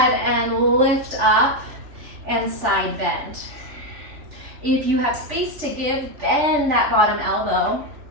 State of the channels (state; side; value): late; left; 3.4 ms